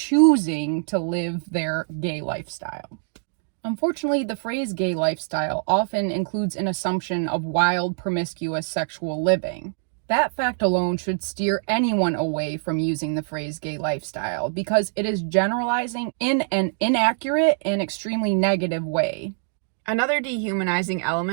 to live their gay lifestyle. Unfortunately, the phrase gay lifestyle often includes an assumption of wild, promiscuous sexual living. That fact alone should steer anyone away from using the phrase gay lifestyle because it is generalizing in an inaccurate and extremely negative way. Another dehumanizing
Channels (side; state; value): left; silent; digital silence